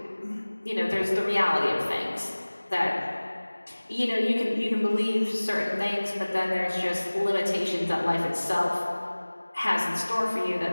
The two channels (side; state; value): both; inverted; correlation -1.00